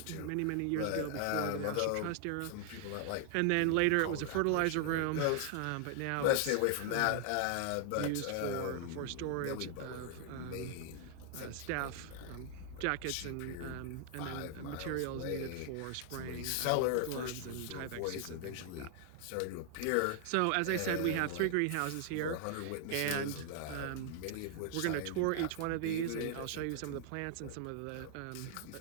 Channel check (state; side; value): different; both; correlation 0.00